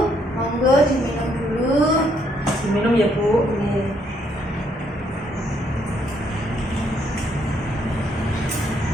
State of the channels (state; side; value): normal; both; correlation 0.71